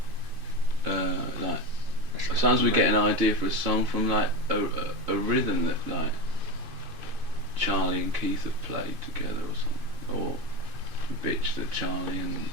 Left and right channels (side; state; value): left; late; 2.5 ms